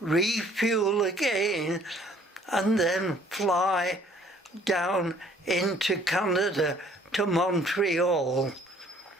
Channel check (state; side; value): normal; both; correlation 0.58